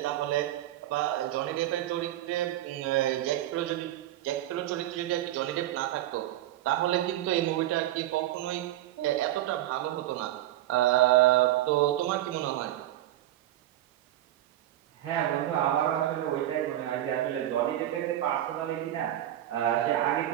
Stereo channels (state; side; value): quieter; left; 13.8 dB